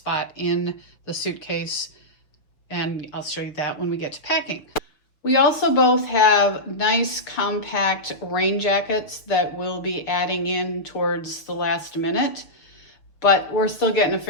in the suitcase, and I'll show you that when we get to packing. We also both have nice compact rain jackets that we'll be adding in towards the last minute, but we're still getting a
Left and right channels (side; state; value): right; late; 6.6 ms